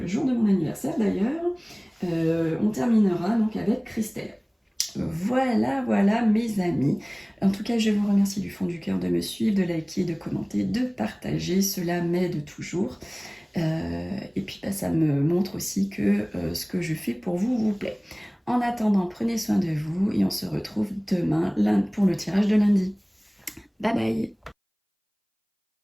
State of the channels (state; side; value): identical; both; correlation 1.00